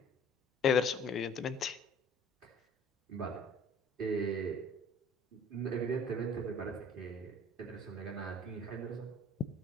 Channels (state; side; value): normal; both; correlation 0.52